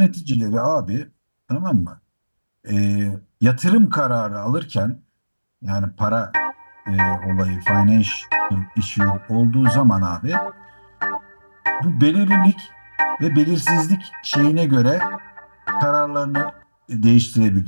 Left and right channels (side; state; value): both; inverted; correlation -1.00